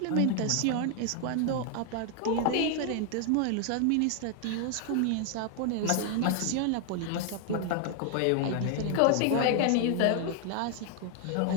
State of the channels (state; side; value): different; both; correlation 0.00